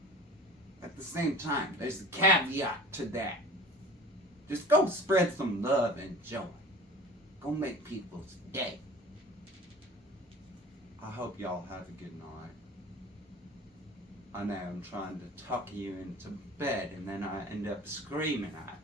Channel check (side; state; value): both; normal; correlation 0.41